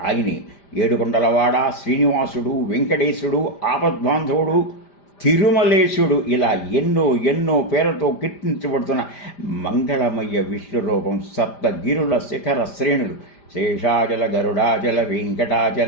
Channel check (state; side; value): late; right; 5.0 ms